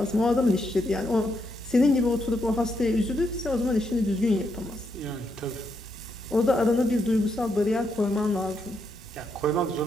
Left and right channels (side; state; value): both; normal; correlation 0.79